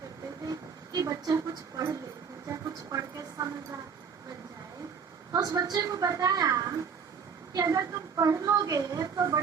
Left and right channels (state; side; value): quieter; left; 6.3 dB